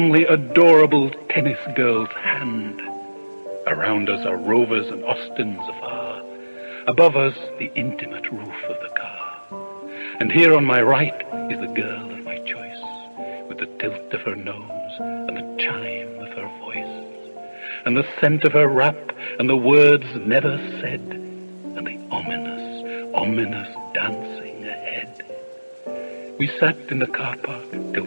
adorable tennis girl's hand. Around us are Rovers and Austins afar, above us the intimate roof of the car. And here on my right is the girl of my choice, with the tilt of her nose and the chime of her voice, and the scent of her wrap and the words never said, and the ominous, ominous dancing ahead. We sat in the car park till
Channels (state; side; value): inverted; both; correlation -1.00